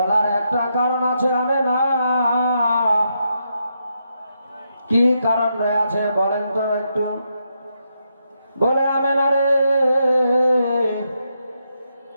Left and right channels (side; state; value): both; inverted; correlation -0.81